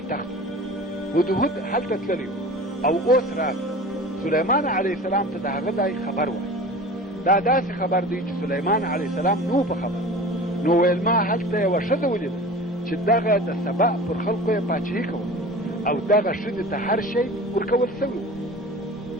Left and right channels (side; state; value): both; normal; correlation 0.38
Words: هدهد هلته تللی او اوس راغی. سلیمان علیه السلام ته د هغه ځای خبر وایي. دا داسې خبر دی چې سلیمان علیه السلام نو په خبر، نو ویل ما هلته یوه ښځه ولیده چې دغه د سبا پر خلکو یې پاچهي کوله او دغه ښځې ته هر شی ورکول سوی و.